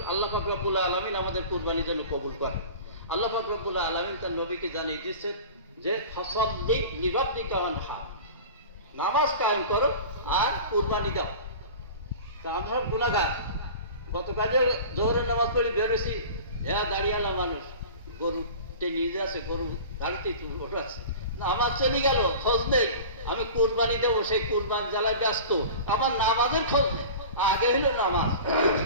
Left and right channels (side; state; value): both; inverted; correlation -0.37